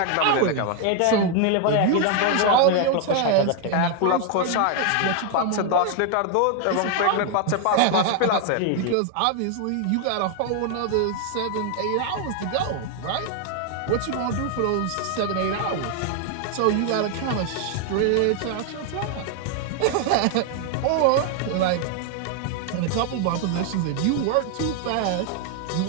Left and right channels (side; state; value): both; different; correlation 0.01